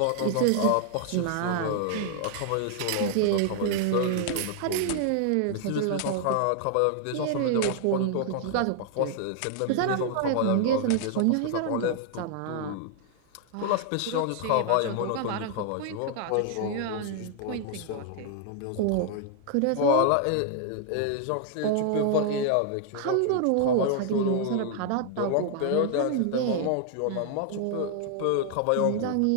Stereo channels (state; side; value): different; both; correlation 0.00